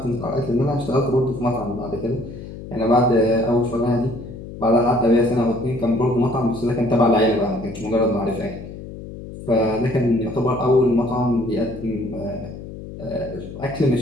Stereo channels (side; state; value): left; noise; hum, 12 dB below the sound